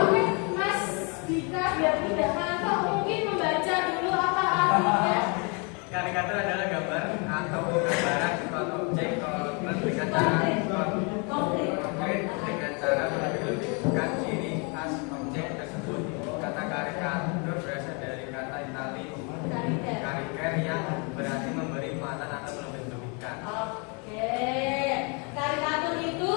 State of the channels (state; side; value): quieter; right; 33.7 dB